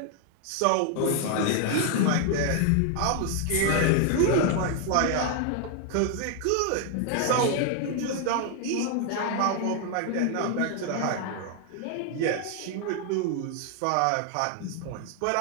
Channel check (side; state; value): both; different; correlation 0.00